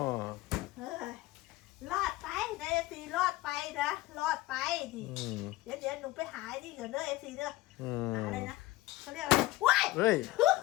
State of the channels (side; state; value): right; quieter; 17.9 dB